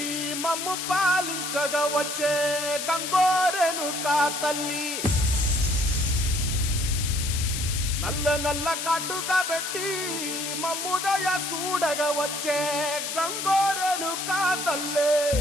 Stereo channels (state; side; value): noise; left; hiss, 4 dB below the sound